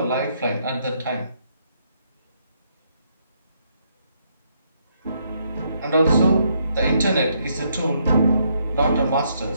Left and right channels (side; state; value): both; inverted; correlation -0.74